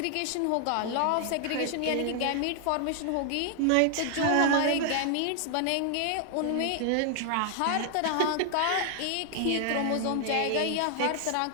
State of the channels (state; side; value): different; both; correlation 0.00